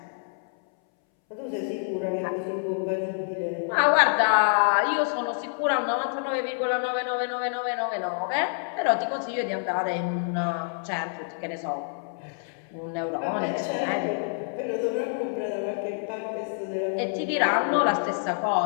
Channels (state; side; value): silent; right; 60 dB below the other